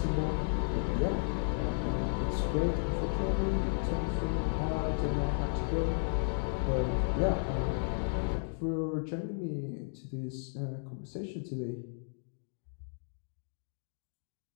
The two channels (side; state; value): right; silent; digital silence